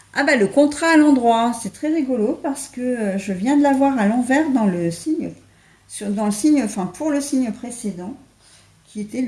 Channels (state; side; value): identical; both; correlation 1.00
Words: Ah bah le contrat à l'endroit, c'est très rigolo parce que je viens de l'avoir à l'envers dans le signe, dans le signe, enfin pour le signe précédent, qui était